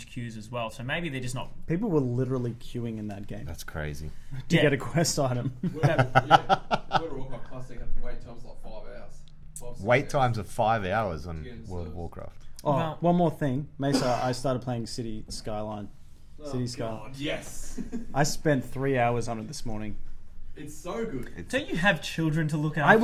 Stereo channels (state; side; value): identical; both; correlation 1.00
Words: queues as well. So maybe they're just not. People were literally queuing in that game That's crazy. to Yeah. get a quest item. World of Warcraft Classic had wait times like 5 hours. 5-6 Wait hours. times of 5 hours on Yeah, World of so- Warcraft. Oh, Well- one more thing, Mesa. I started playing City Skyline. City Skyline. God, yes. I spent 3 hours on it this morning. It's so good. Don't you have children to look after? I